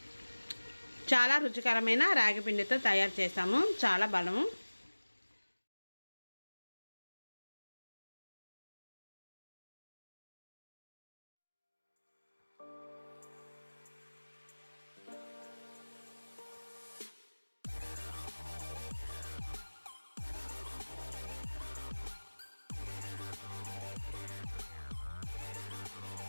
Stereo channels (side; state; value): both; inverted; correlation -1.00